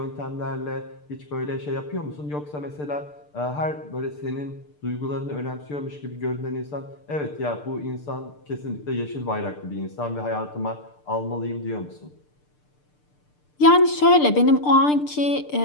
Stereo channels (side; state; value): right; late; 6.7 ms